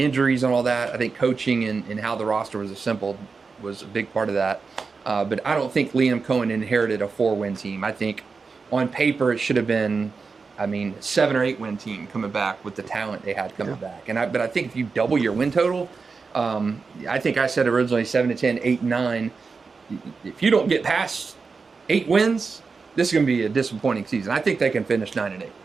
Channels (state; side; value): quieter; left; 4.7 dB